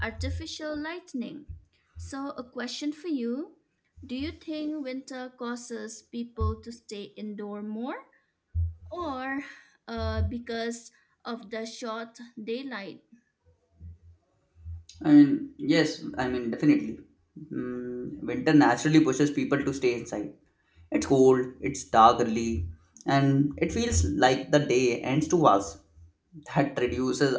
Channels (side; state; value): both; identical; correlation 1.00